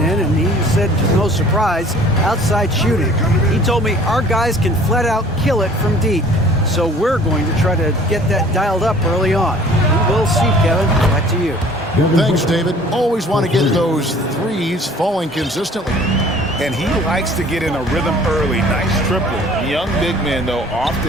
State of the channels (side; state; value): both; normal; correlation 0.51